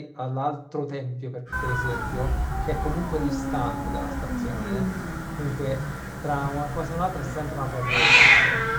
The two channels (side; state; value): both; identical; correlation 1.00